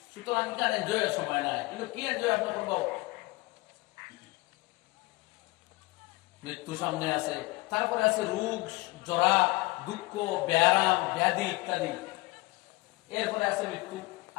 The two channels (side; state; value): right; quieter; 23.0 dB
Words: সুতরাং এখানে এনজয়ের সময় নাই, কিন্তু কি এনজয় আপনি করবো? মৃত্যু সামনে আছে, তারপরে আছে রোগ, জরা, দুঃখ, ব্যারাম, ব্যাধি ইত্যাদি। এরপরে আছে মৃত্যু,